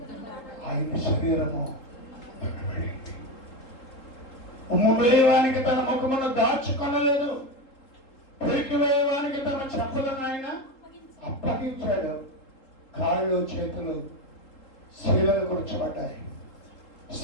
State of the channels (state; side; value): late; right; 3.8 ms